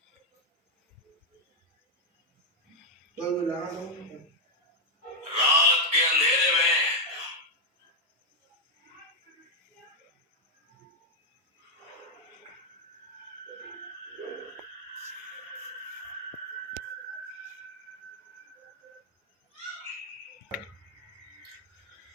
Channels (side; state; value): both; normal; correlation -0.01